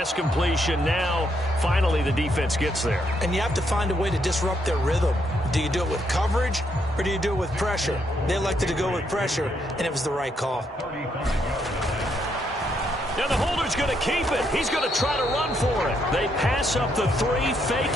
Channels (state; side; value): normal; both; correlation 0.75